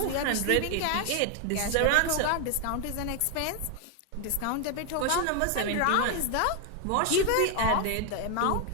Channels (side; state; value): both; different; correlation 0.01